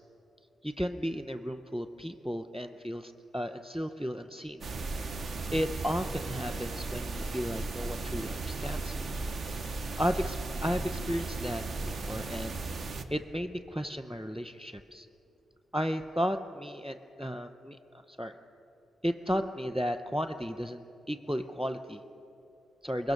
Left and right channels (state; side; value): normal; both; correlation 0.90